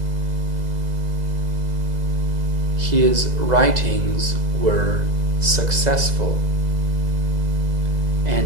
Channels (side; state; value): left; late; 2.0 ms